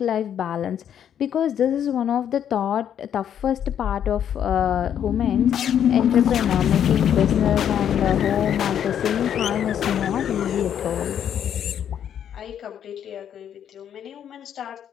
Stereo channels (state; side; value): quieter; right; 9.3 dB